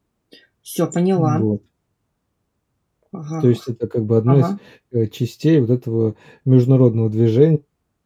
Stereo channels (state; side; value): identical; both; correlation 1.00